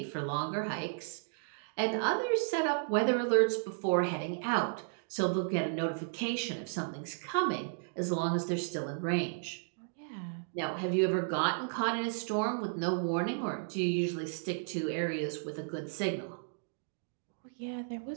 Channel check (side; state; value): left; silent; digital silence